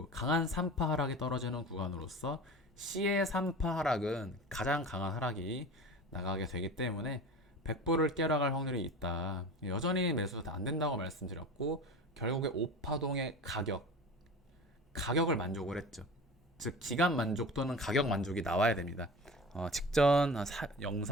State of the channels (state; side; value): normal; both; correlation 0.34